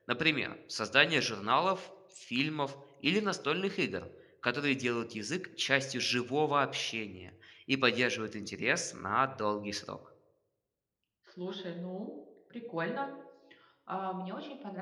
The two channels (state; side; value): identical; both; correlation 1.00